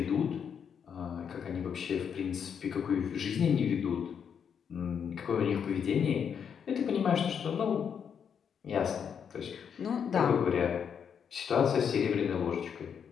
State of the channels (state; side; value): quieter; right; 7.4 dB